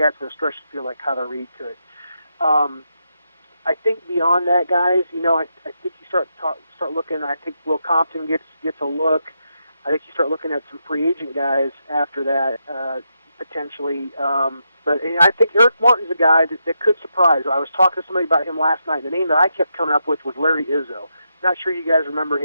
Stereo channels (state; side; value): inverted; both; correlation -0.83